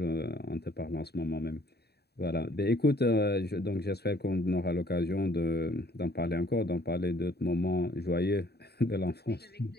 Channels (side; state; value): right; late; 0.47 ms